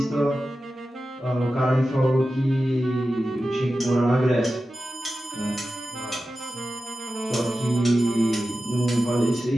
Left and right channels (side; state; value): both; normal; correlation 0.93